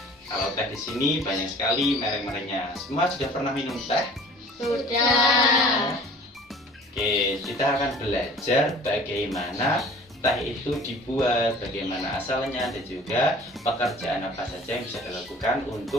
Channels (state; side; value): normal; both; correlation 0.48